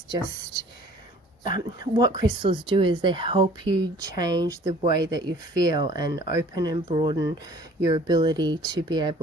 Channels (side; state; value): both; normal; correlation 0.51